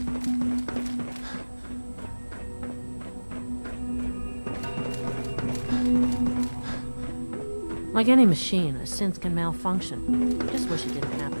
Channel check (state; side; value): inverted; both; correlation -1.00